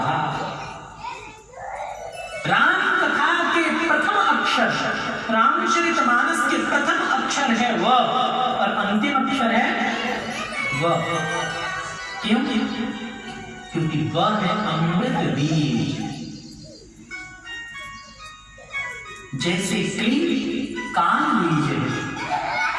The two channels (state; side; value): identical; both; correlation 1.00